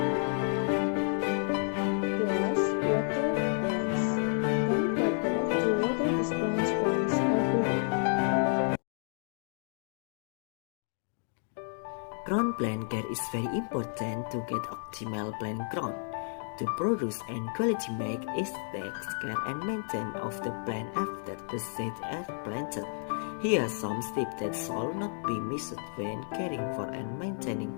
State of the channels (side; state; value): right; silent; 57 dB below the other